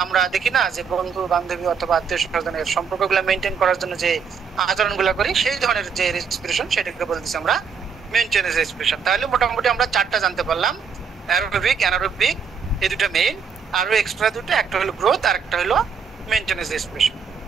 আমরা দেখি না যে বন্ধু বান্ধবী অথবা আত্মীয় স্বজনের সম্পর্কগুলো মেইনটেইন করার জন্য যে আচরণগুলো করি, সেই ধরনের যে রেসপিরেশন সেটাকে বলতেছি আমরা মেইনটেনেন্স রেসপিরেশন। তাহলে মোটামুটি আমরা চারটা জানতে পারলাম, অ্যারোবিক, অ্যানারোবিক, এই দুটো মেইন, আরো এক্সট্রা দুটো, একটা হলো গ্রোথ আর একটা হলো মেইনটেনেন্স রেসপিরেশন।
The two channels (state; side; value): quieter; left; 6.3 dB